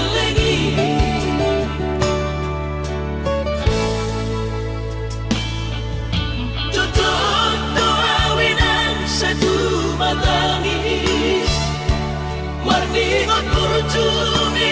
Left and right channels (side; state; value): both; identical; correlation 1.00